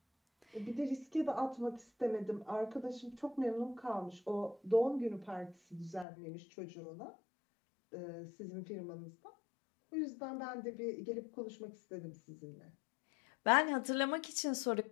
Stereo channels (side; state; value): right; drops out; at 6.1 s